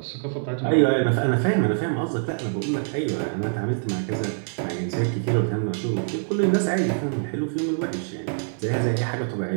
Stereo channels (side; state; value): left; silent; 56 dB below the other